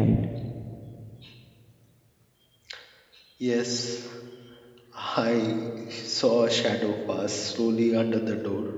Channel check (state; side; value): identical; both; correlation 1.00